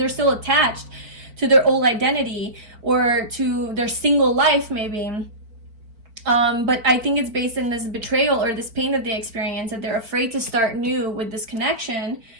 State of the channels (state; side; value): late; left; 4.5 ms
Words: still attached to their old identity or to their single life, maybe. But I think it's based in this betrayal or this pain that they experience, that they're afraid to start new with this connection.